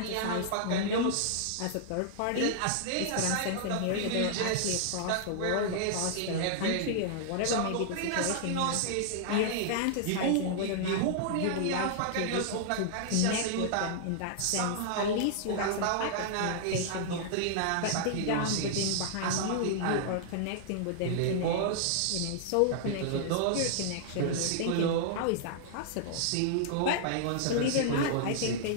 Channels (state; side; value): different; both; correlation -0.01